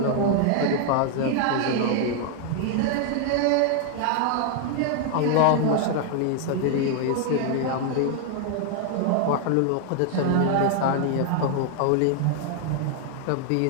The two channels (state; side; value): different; both; correlation 0.00